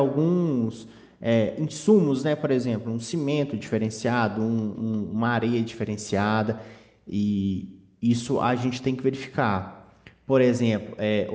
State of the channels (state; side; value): identical; both; correlation 1.00